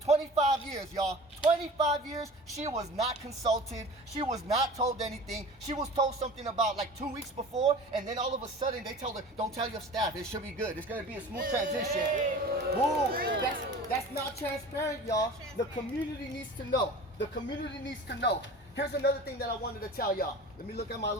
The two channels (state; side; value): normal; both; correlation 0.39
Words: years, y'all. 25 years, she was not consulted. She was not told anything. She was told something about like 2 weeks before, and then all of a sudden they told her, don't tell your staff, it should be good. It's gonna be a smooth transition. Woo, that's not transparent, y'all. The community needs to know. Here's another thing that I wanted to tell y'all. Let me look at my